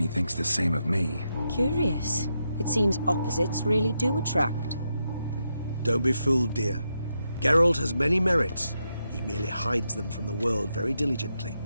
thinks the same of me. Curious. It seems opposites really do attract. Don't be fooled, dear. Geralt has many merits. He merely hides them from the world very diligently.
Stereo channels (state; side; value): inverted; both; correlation -0.84